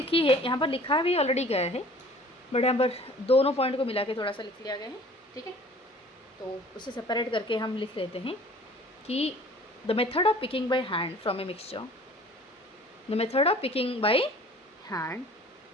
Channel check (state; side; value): normal; both; correlation 0.49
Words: है, यहाँ पर लिखा भी ऑलरेडी गया है, बट यहाँ पर दोनों पॉइंट को मिला के थोड़ा सा लिख लिया गया है, ठीक है। तो उसे सेपरेट करके हम लिख लेते हैं कि the method of picking by hand from a mixture, the method of picking by hand